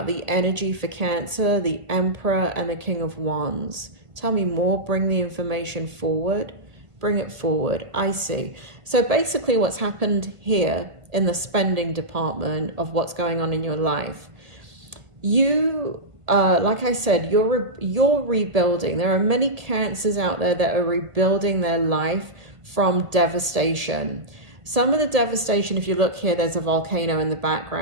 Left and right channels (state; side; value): late; left; 1.5 ms